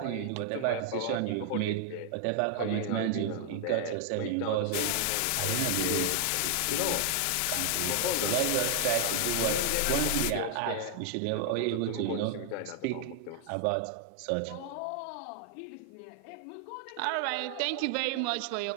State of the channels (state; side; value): different; both; correlation 0.00